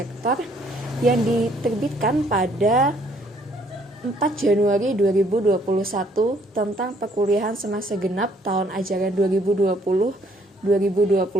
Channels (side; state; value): both; normal; correlation 0.64